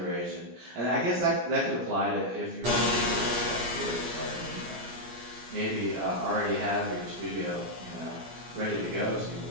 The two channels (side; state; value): left; late; 17 ms